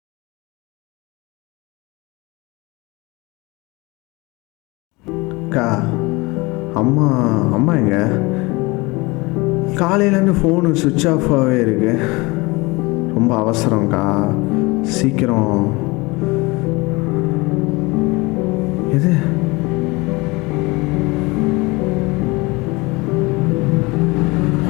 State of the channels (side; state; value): right; quieter; 24.4 dB